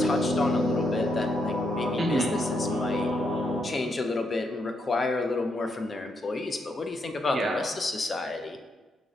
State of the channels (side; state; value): both; normal; correlation 0.79